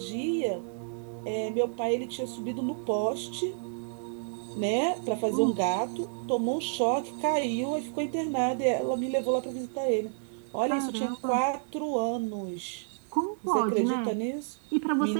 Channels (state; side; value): silent; left; digital silence